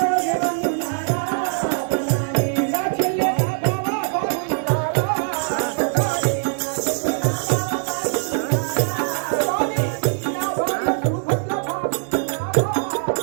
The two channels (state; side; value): silent; left; digital silence